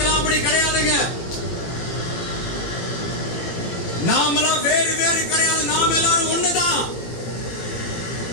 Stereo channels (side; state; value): right; late; 18 ms